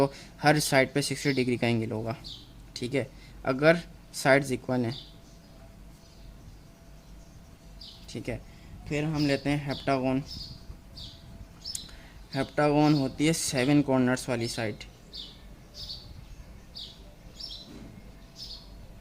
हर साइड पे 60 डिग्री का एंगल होगा। ठीक है, अगर साइड्स इक्वल हैं। ठीक है, फिर हम लेते हैं हेप्टागन। हेप्टागन होती है 7 कॉर्नर्स वाली साइड।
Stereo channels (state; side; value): identical; both; correlation 1.00